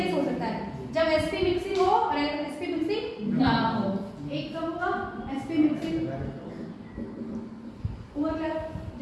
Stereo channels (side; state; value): both; identical; correlation 1.00